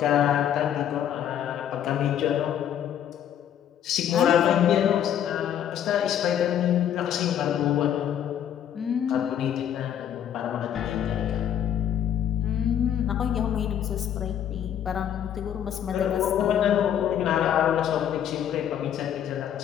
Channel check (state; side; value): quieter; right; 9.9 dB